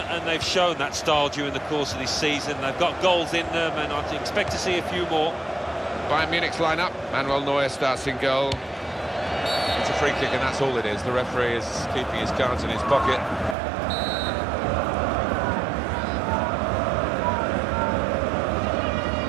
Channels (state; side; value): drops out; left; at 13.6 s